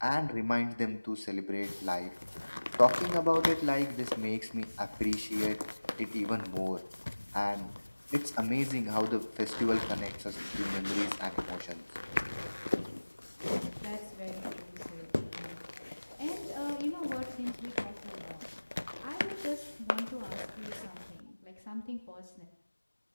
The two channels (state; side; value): inverted; both; correlation -1.00